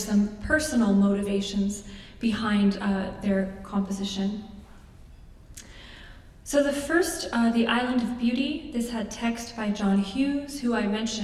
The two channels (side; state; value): both; identical; correlation 1.00